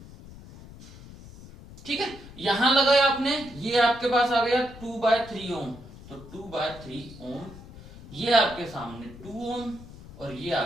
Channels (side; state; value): left; noise; rumble, 17 dB below the sound